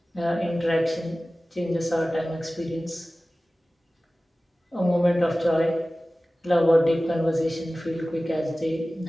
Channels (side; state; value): both; normal; correlation 0.97